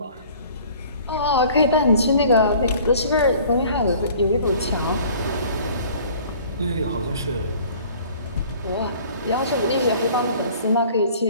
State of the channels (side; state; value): both; inverted; correlation -0.50